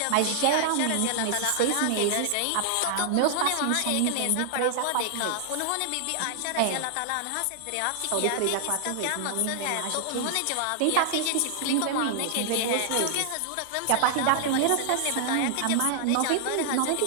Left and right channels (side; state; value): both; different; correlation 0.00